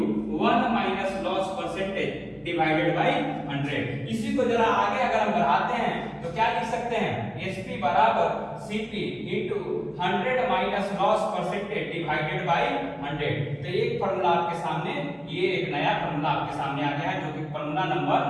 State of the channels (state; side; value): identical; both; correlation 1.00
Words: 1 minus loss percentage divided by 100। इसी को जरा आगे अगर हम बढ़ाते हैं तो क्या लिख सकते हैं, एसपी बराबर CP into 100 minus loss percentage divided by 100। तो एक फार्मूला आपके सामने, ये एक नया फार्मूला आपके सामने आ गया है जो कि फार्मूला नंबर